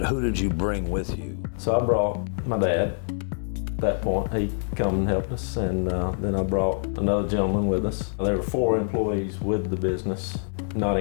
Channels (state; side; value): silent; right; 61 dB below the other